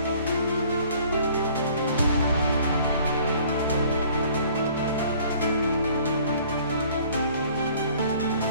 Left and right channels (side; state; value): both; inverted; correlation -0.55